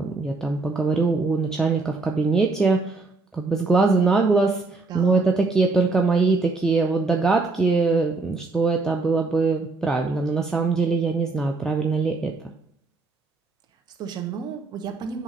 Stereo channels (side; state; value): left; quieter; 3.7 dB